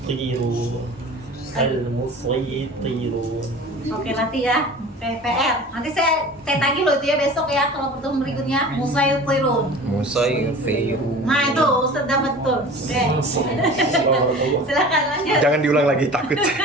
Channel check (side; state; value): both; normal; correlation 0.40